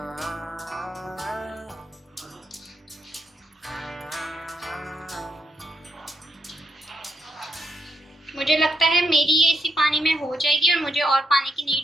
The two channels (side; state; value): both; normal; correlation 0.79